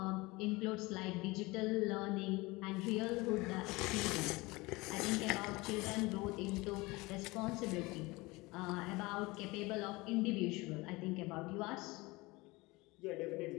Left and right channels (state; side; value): quieter; right; 22.9 dB